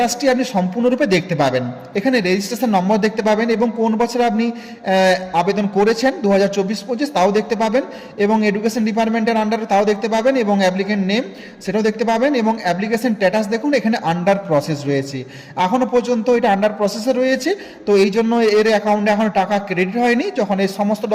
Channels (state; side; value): identical; both; correlation 1.00